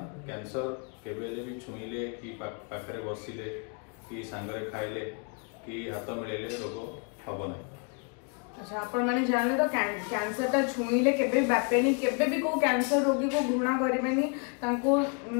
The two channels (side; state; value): right; quieter; 36.4 dB